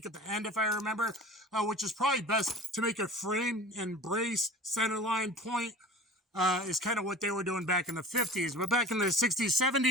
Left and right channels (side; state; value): both; normal; correlation 0.39